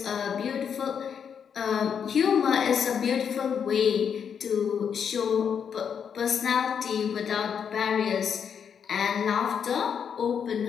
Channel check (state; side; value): quieter; right; 7.4 dB